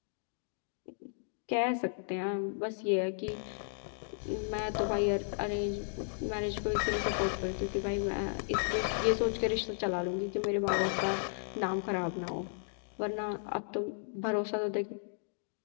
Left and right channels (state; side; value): silent; right; digital silence